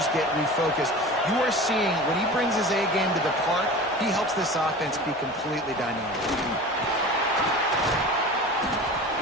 get refocused. You are seeing when he brings his A game to the park, he helps this offense be completely dynamic.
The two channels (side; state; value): both; normal; correlation 0.35